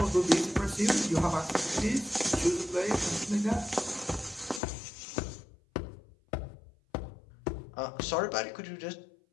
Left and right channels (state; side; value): drops out; right; at 4.6 s